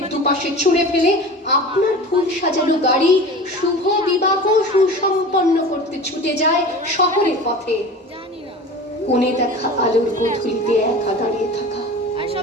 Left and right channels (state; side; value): normal; both; correlation 0.36